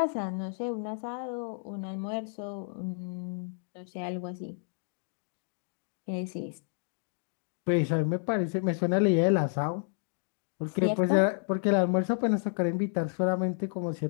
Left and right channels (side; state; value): right; silent; digital silence